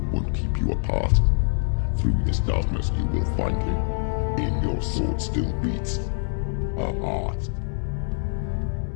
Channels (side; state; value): right; silent; 62 dB below the other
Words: won't keep you apart. Through this darkness you will find him. In your sword still beats a heart.